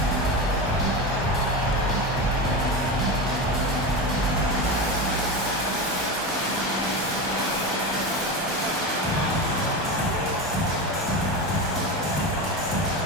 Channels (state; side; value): normal; both; correlation 0.21